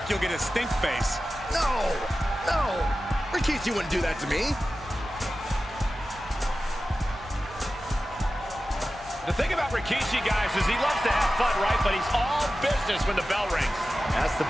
you'll get a stink face. No. Rikishi wouldn't do that to me. The thing about Rikishi, guys, is he loves to have fun, right? But he's all business when the bell rings. That's the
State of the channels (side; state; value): both; normal; correlation 0.94